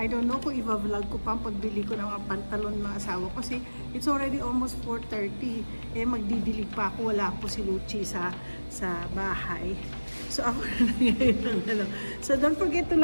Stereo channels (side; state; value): both; inverted; correlation -1.00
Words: don't know kung i-vlog ko pa ang pagbili ko ng mga pantalon ng asawa ko. Kasi it's already almost 4:30. Magdidilig pa ako. Wala po si Luchi sa bahay. So, ako na ngayon. So, don't forget to